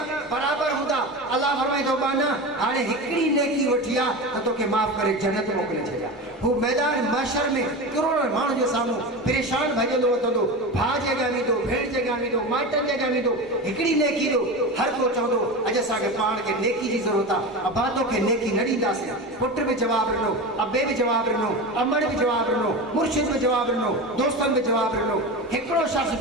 बराबरि हूंदा अल्लाह फरमाईंदो बाना हाणे हिकिड़ी नेकी वठी आहे त तोखे माफ़ करे जन्नत मोकिले छॾिया वो मैदान माशर में करोड़ों माण्हुनि जे साम्हूं परेशान भॼंदो वठंदो, भाउ जे अॻियां वेंदो, भेण जे अॻियां वेंदो, माइटनि जे अॻियां वेंदो, हिकिड़ी नेकी ॾियो। हर को चवंदो अॼु असांखे पाण खे नेकी जी ज़रूरत आहे, अबा तोखे नेकी न ॾींदासीं। पुट बि जवाबु ॾिनो, अबे बि जवाबु ॾिनो, अमड़ बि जवाबु ॾिनो, मुर्शिद बि जवाबु ॾिनो, दोस्तनि बि जवाबु ॾिनो। हिकिड़ो शख़्स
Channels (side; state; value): both; normal; correlation 0.25